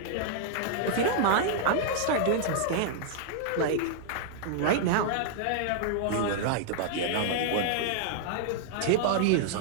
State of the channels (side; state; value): both; different; correlation -0.01